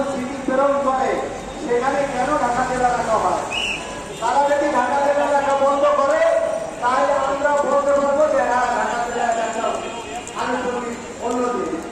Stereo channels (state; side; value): identical; both; correlation 1.00